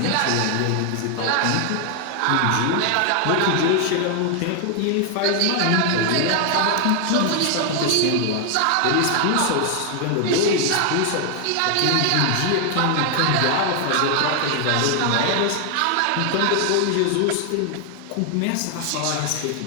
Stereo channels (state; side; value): different; both; correlation 0.00